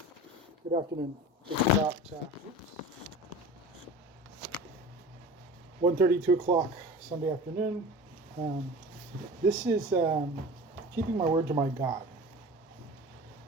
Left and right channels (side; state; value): both; normal; correlation 0.37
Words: afternoon. It's about 1:30, 2 o'clock Sunday afternoon. Um, this is keeping my word to my God.